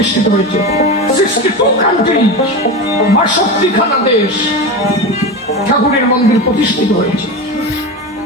হয়েছে। 62 কান্ট্রি, 62খানা দেশ ঠাকুরের মন্দির প্রতিষ্ঠিত হয়েছে।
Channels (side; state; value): both; normal; correlation 0.23